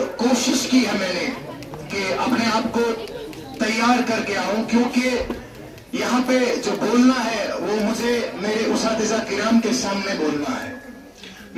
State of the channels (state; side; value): identical; both; correlation 1.00